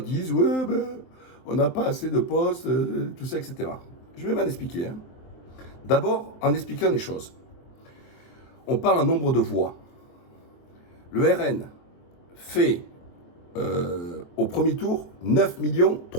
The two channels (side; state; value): right; late; 23 ms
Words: disent ouais, ben, on n'a pas assez de postes, tout ça, etc. Je vais m'en expliquer. Hein. D'abord, en expliquant les choses. On parle en nombre de voix. Le RN fait au premier tour 9